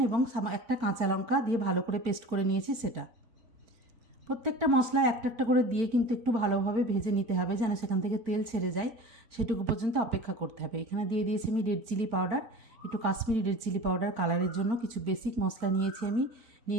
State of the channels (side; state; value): left; late; 4.4 ms